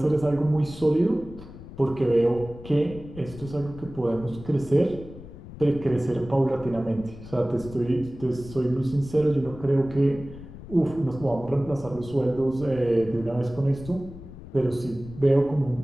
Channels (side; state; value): left; noise; rumble, 15 dB below the sound